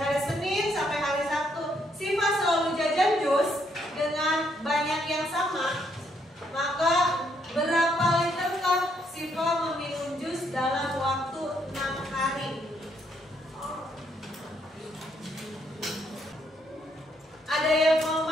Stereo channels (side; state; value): both; normal; correlation 0.73